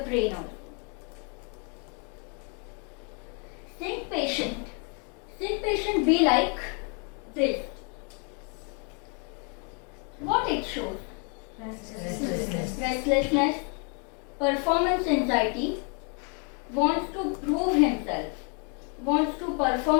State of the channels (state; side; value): quieter; right; 38.1 dB